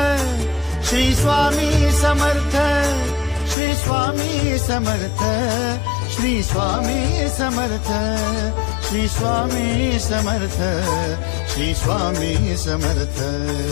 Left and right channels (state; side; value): drops out; right; at 3.6 s